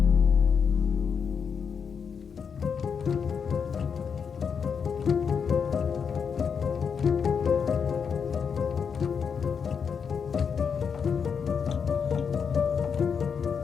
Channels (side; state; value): right; quieter; 6.5 dB